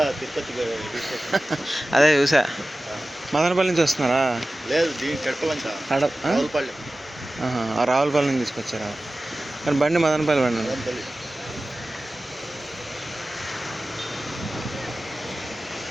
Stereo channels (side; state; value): both; normal; correlation 0.96